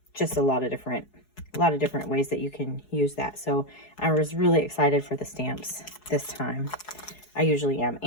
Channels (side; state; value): right; late; 4.7 ms